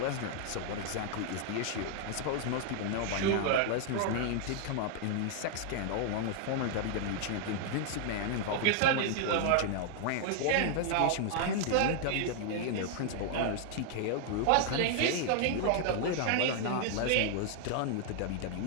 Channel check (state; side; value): different; both; correlation 0.00